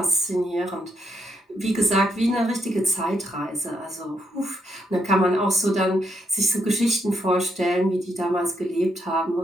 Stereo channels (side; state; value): both; normal; correlation 0.77